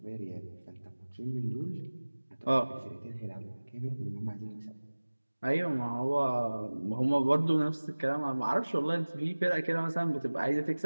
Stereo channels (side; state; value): both; inverted; correlation -1.00